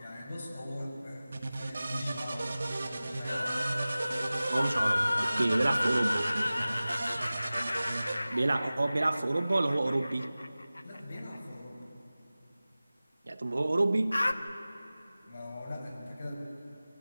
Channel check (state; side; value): inverted; both; correlation -0.97